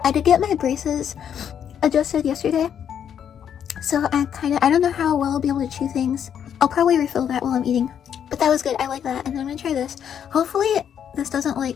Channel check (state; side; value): quieter; right; 8.7 dB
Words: I did get my braces adjusted yesterday, so I don't know how well I'll be able to chew things. I'll probably refill that while I'm eating, but that was good. I like that. And then I'm gonna try this. Hopefully this doesn't